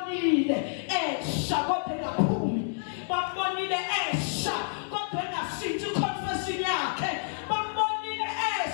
esha kodwa engaphumi bambonile esha kodwa engashintsha iconfession yakhe bambonile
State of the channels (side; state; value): right; silent; digital silence